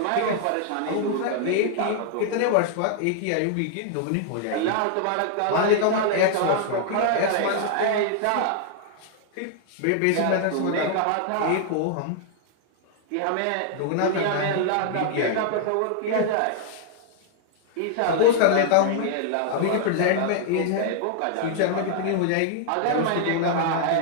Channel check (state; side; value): different; both; correlation -0.01